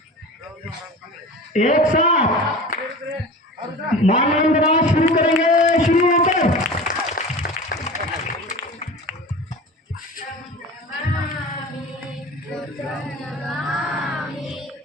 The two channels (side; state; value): both; normal; correlation 0.35